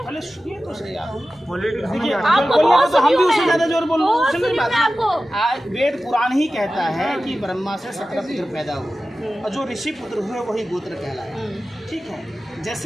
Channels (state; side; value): normal; both; correlation 0.95